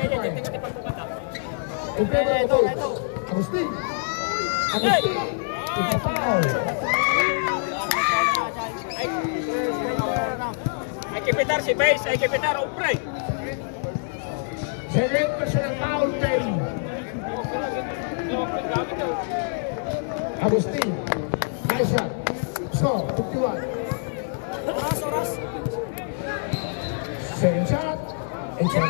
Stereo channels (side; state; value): right; silent; digital silence